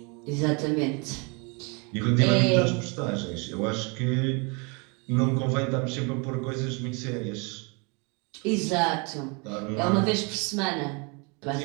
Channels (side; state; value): left; quieter; 31.8 dB